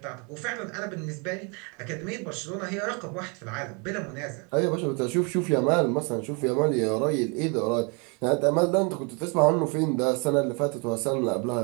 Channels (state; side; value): quieter; left; 33.1 dB